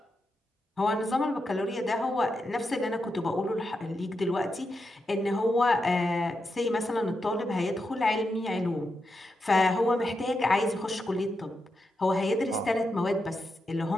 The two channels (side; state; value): both; normal; correlation 0.86